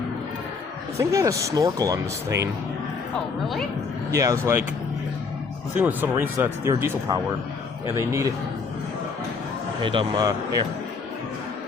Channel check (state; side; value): quieter; right; 4.9 dB